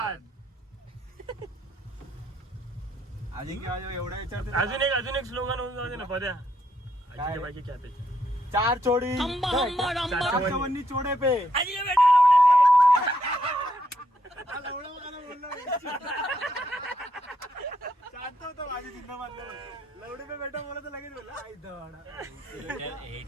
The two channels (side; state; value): both; normal; correlation 0.76